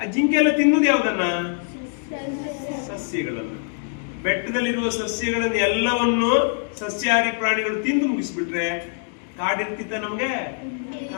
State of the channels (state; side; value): silent; right; 63 dB below the other